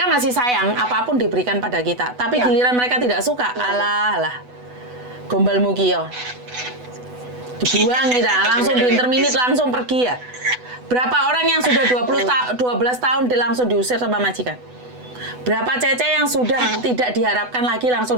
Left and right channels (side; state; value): left; late; 8.1 ms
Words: masih sayang apapun diberikan pada kita. Tapi giliran mereka tidak suka, alah, gombal mukio. Dibuang kita, langsung di interminit langsung pergi ya. Berapa orang yang sudah 12 tahun langsung diusir sama majikan? Berapa cece yang sudah tidak diharapkan lagi langsung